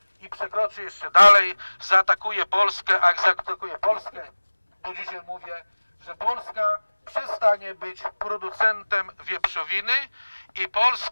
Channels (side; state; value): both; inverted; correlation -1.00